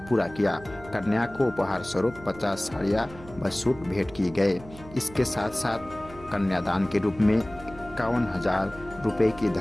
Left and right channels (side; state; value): right; noise; hum, 18 dB below the sound